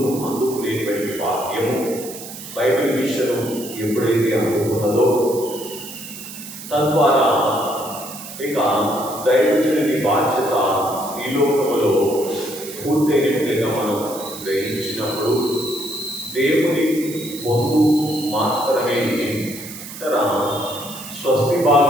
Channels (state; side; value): noise; right; hiss, 12 dB below the sound